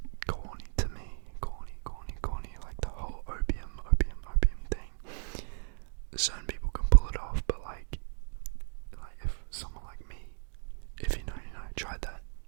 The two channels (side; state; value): left; silent; 55 dB below the other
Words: corny to me, corny, like the whole opium thing. Certain people can pull it off, but like if someone like me, if you know, tried that,